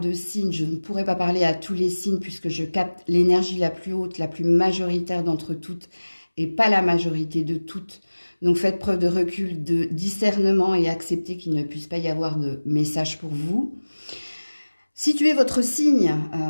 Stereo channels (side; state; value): both; inverted; correlation -1.00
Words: de signes, je ne pourrai pas parler à tous les signes puisque je capte l'énergie la plus haute, la plus majoritaire d'entre toutes et pas la majorité de toutes. Donc faites preuve de recul, de discernement et acceptez qu'il ne puisse pas y avoir de message pour vous. Situez votre signe,